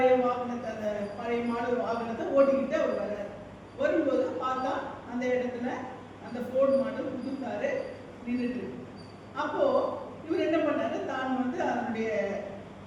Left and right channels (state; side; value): identical; both; correlation 1.00